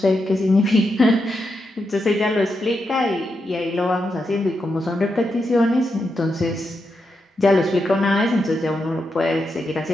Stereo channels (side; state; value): both; normal; correlation 0.85